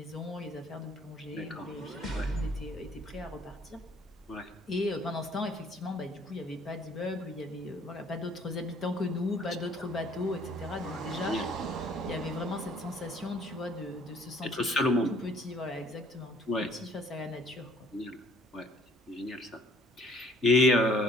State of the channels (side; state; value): both; normal; correlation 0.58